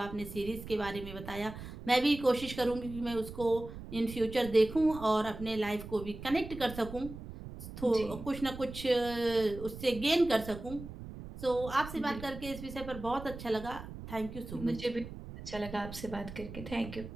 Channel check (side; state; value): right; noise; rumble, 12 dB below the sound